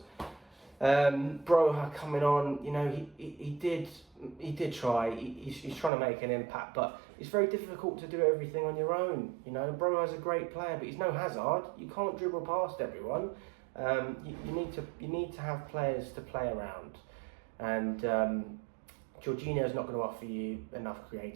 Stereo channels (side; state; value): left; drops out; at 5.9 s